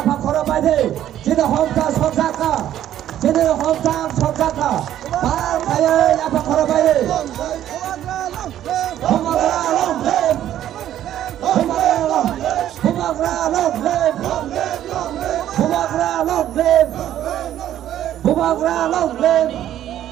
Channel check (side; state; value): left; quieter; 11.8 dB